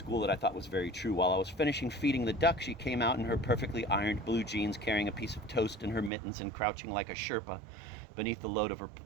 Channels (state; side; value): drops out; left; at 6.1 s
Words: that I thought was very true. While I was finishing feeding the duck, she came out in her perfectly ironed blue jeans, carrying a piece of toast in her mittens and crouching like a Sherpa beneath the load of